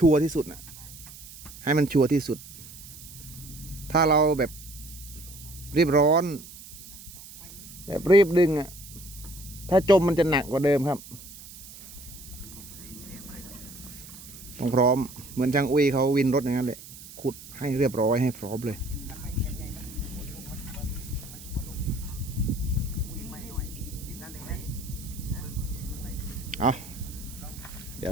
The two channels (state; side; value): noise; right; hiss, 16 dB below the sound